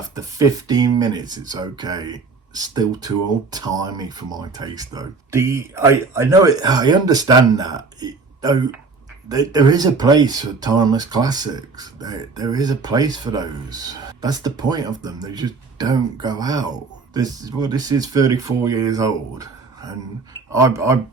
15 minutes, it's okay. Still too old-timey for my taste, though. I know it. I understand that. Though there is a place for timeless classics. There is a place for those. That's the point of them. They just don't go out. This is 34 years old, and I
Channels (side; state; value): left; quieter; 4.3 dB